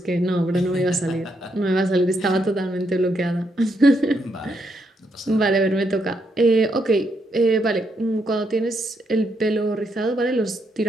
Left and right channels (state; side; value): normal; both; correlation 0.78